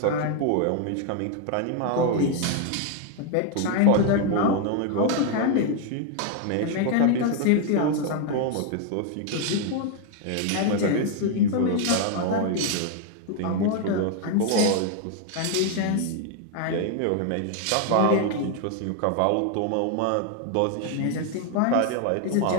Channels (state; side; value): different; both; correlation 0.00